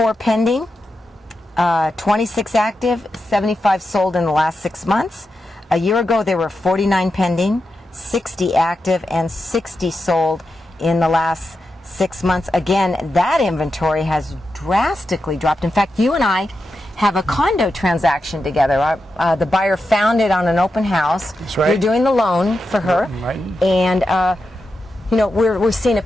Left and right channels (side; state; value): both; normal; correlation 0.89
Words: pending, 26 active, 75 sold in the last 6 months. A year ago there were 49 pending, 60 active, and 60 sold in the last 6 months. Again, that inventory has drastically dropped. In fact, you and I have a condo transaction together. The buyer found it on an open house. That's right. You're doing the loan for her. Right. And we're seeing a